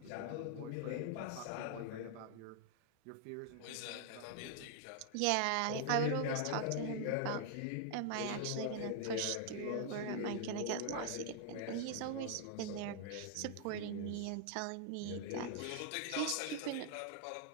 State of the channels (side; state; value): both; different; correlation 0.00